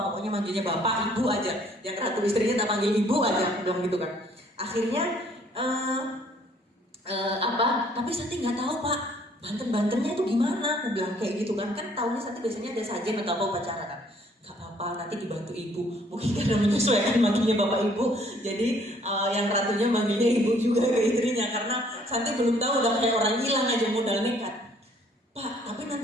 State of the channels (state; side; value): normal; both; correlation 0.61